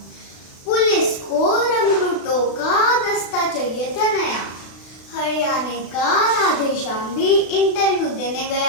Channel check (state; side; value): late; right; 36 ms